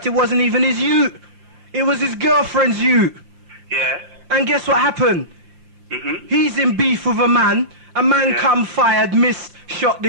it wasn't even his ute. It was his girlfriend's ute. Yeah. And guess what happened? He's in beef with a man. A man come fired, missed, shot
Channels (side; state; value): left; late; 5.7 ms